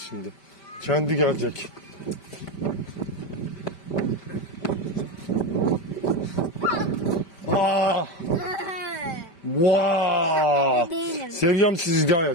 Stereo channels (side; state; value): right; late; 5.1 ms